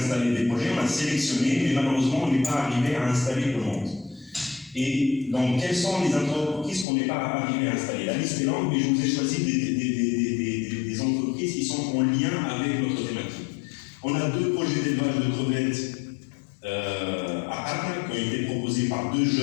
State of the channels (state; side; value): drops out; right; at 6.9 s